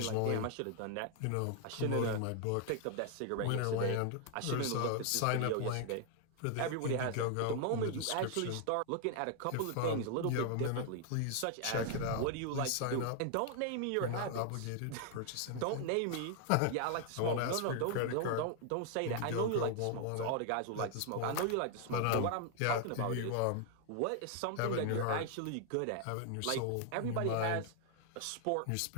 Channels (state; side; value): different; both; correlation 0.00